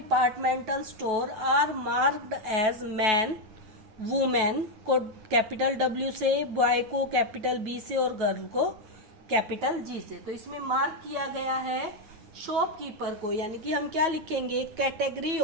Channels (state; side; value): late; left; 9.2 ms